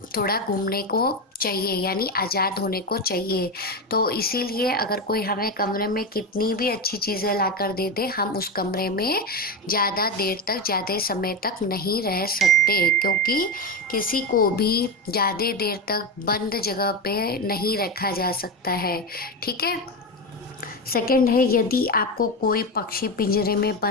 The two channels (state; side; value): normal; both; correlation 0.15